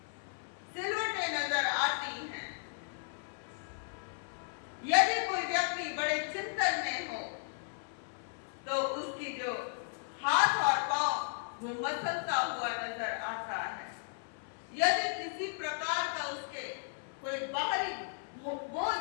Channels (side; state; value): right; silent; 54 dB below the other